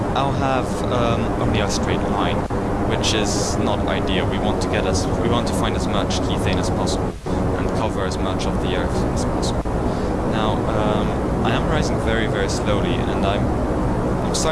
I'll have only a straight line, which is not ideal. We want to find as much kethane as possible and cover as much of the Earth as possible. Now, I am rising very, very slowly, and I'm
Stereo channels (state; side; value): identical; both; correlation 1.00